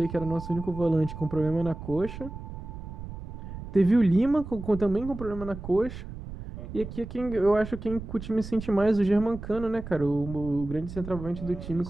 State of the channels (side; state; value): right; noise; rumble, 11 dB below the sound